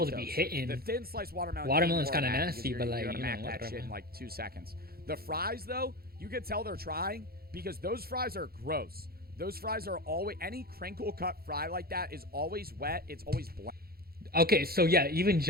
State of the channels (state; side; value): late; left; 0.44 ms